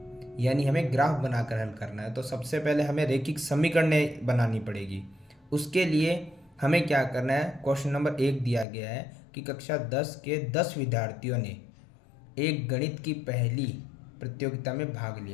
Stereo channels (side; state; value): right; drops out; at 8.7 s